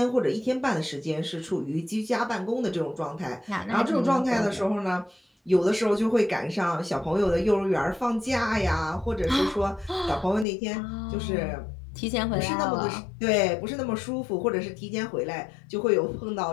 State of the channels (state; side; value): drops out; right; at 10.5 s